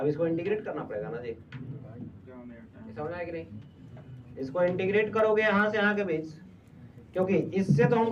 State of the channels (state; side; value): identical; both; correlation 1.00